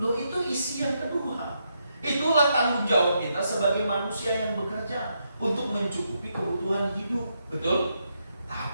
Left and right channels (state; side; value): inverted; both; correlation -0.80